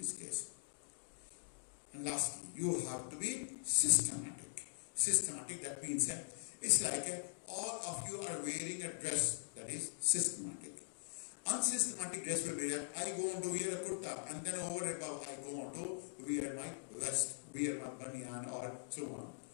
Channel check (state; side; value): silent; right; digital silence